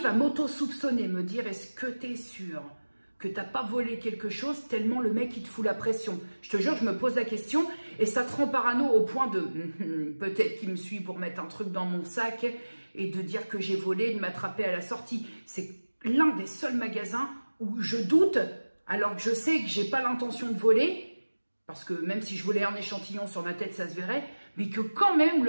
à m'auto-soupçonner, me dire est-ce que tu es sûr que tu n'as pas volé quelque chose tellement le mec il te fout la pression. Je te jure, je me pose la question et ça te rend parano au point de peut-être qu'il me suit pour mettre un truc dans mon sac et de dire que j'ai volé, de m'attraper à la sortie. C'est l'un des seuls magasins où je doute alors que je sais que j'ai pas l'intention de voler. Parce que même si je volais un échantillon sur ma tête, ça se verrait. Mais que quand même,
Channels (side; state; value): both; inverted; correlation -1.00